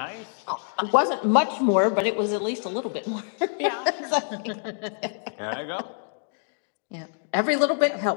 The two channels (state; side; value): silent; right; 60 dB below the other